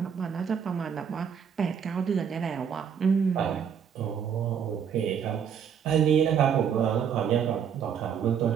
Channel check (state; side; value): quieter; left; 7.7 dB